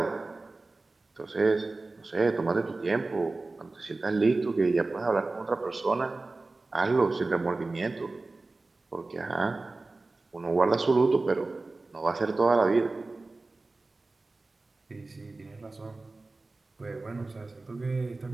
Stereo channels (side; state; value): left; quieter; 3.4 dB